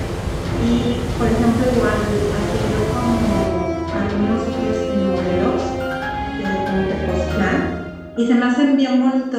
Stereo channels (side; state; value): both; identical; correlation 1.00